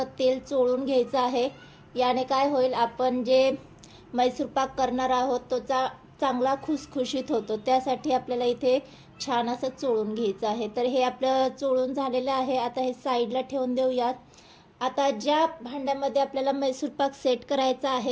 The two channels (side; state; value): both; identical; correlation 1.00